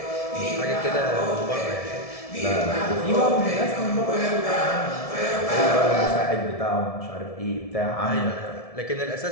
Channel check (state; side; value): late; right; 1.7 ms